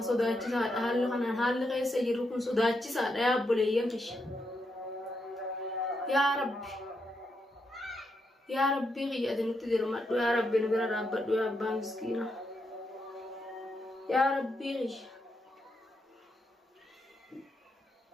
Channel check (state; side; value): normal; both; correlation 0.82